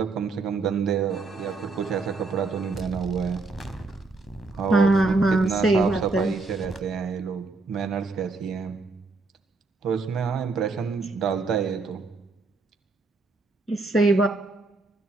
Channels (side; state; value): left; quieter; 3.7 dB